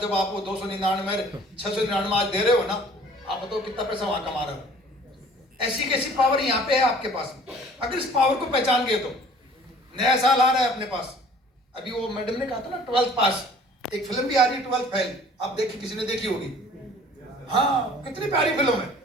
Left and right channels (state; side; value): normal; both; correlation 0.52